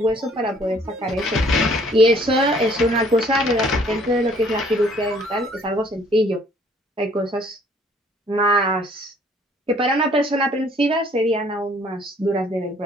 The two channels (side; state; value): both; normal; correlation 0.59